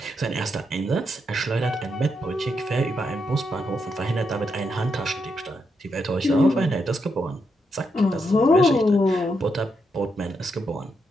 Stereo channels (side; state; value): both; normal; correlation 0.81